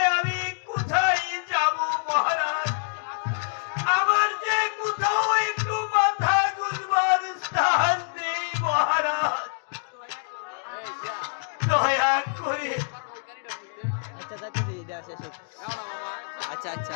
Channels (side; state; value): right; silent; digital silence